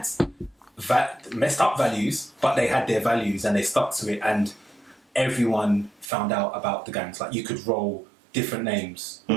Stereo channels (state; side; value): drops out; left; at 6.1 s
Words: messed up values, but they had their values and they stuck to it, and everyone found out about the gangs. Like you could roll different names.